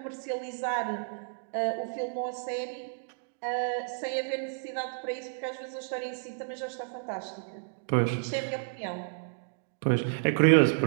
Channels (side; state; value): left; silent; digital silence